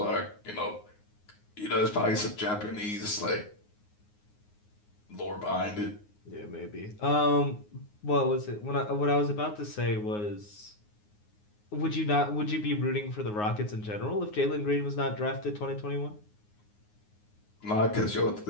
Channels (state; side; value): late; right; 9.6 ms